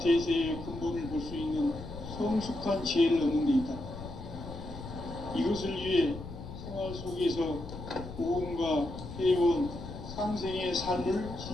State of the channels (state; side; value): noise; left; rumble, 11 dB below the sound